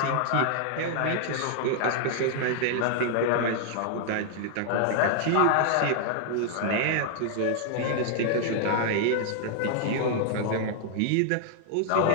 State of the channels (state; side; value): different; both; correlation 0.00